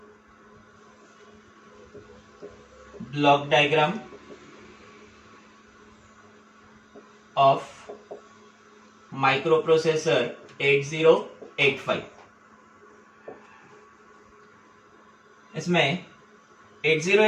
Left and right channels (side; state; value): both; identical; correlation 1.00